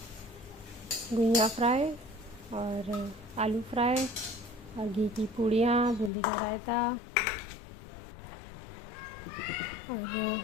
गुइया फ्राई और आलू फ्राई और घी की पूड़ियाँ, बूंदी का रायता और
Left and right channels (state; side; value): drops out; right; at 6.1 s